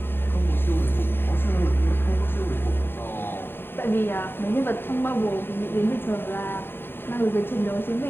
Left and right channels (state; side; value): late; right; 0.11 ms